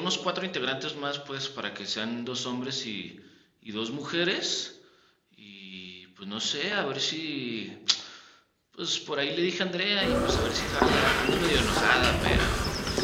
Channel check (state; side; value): identical; both; correlation 1.00